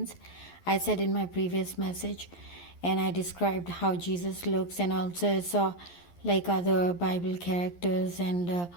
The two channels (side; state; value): right; late; 11 ms